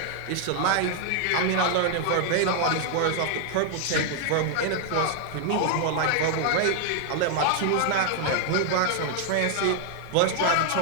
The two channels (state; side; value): different; both; correlation 0.00